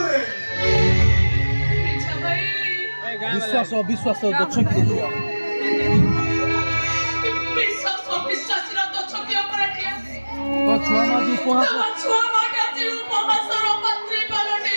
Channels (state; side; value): inverted; both; correlation -1.00